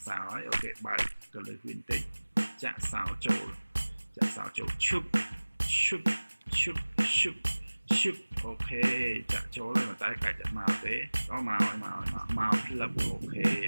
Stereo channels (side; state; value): both; inverted; correlation -1.00